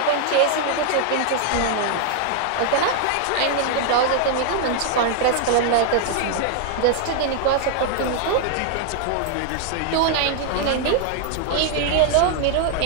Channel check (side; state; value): both; different; correlation 0.00